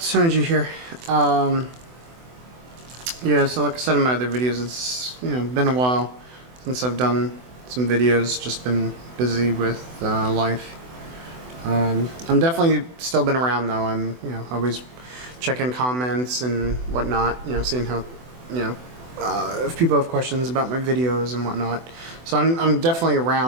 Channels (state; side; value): late; left; 24 ms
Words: here. Yeah, so like I said in my other videos, it's been a while since I've done some videos. Just been busy with life. I'm definitely still been around though. I'm always checking comments and whatnot. Seeing how if people have questions about my videos and whatnot. So I'm definitely